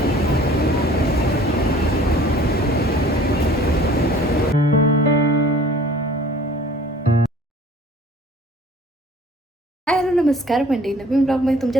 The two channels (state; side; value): normal; both; correlation 0.50